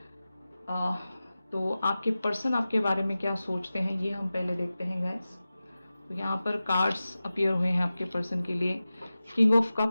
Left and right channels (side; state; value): both; inverted; correlation -0.95